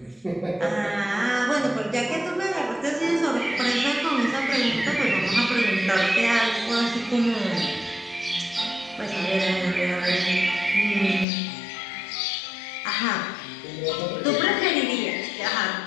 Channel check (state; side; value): drops out; right; at 11.2 s